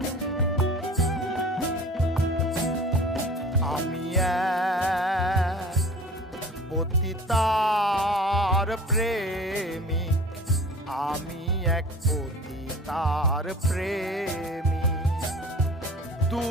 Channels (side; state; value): both; normal; correlation 0.43